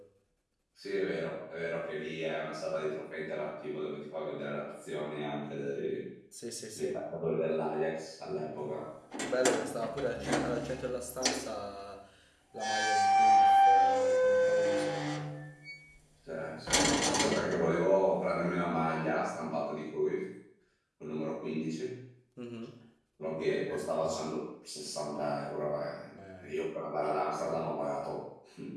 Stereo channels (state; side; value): identical; both; correlation 1.00